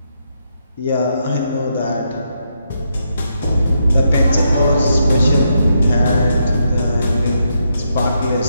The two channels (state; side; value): inverted; both; correlation -0.80